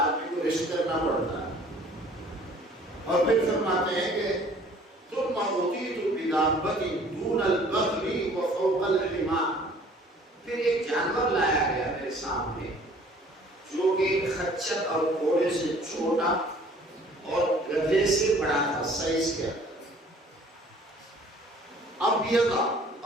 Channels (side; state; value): both; normal; correlation 0.53